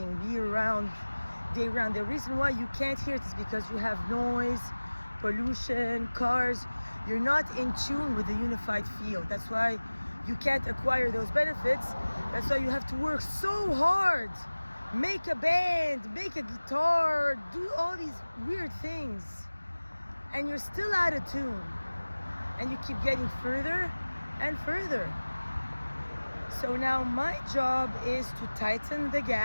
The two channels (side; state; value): both; inverted; correlation -1.00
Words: year round, day round. The reason why you can't hear it is because you have noise, pollution, cars. You're not in tune with the unified field. That's why you can't acquire those benefits. That's why you have to work so hard. Make a band, make a guitar, do all these weird things and you're still out of tune, and you keep getting further and further. So now my job is to tighten the